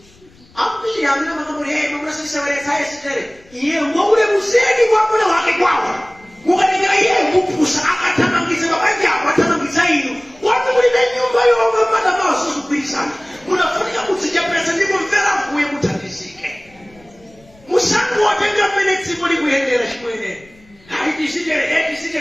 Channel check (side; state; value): left; noise; rumble, 28 dB below the sound